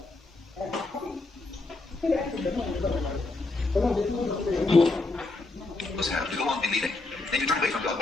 Have to go on in leaving. Then you turn away from God,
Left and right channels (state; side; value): quieter; right; 3.3 dB